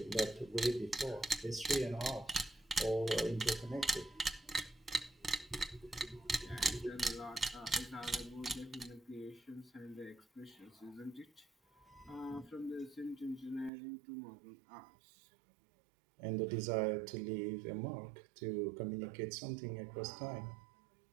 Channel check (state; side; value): drops out; left; at 13.7 s